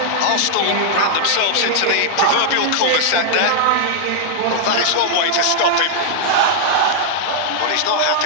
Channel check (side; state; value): both; different; correlation -0.01